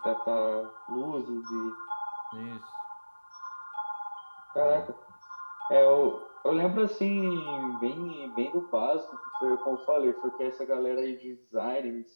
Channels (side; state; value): both; inverted; correlation -1.00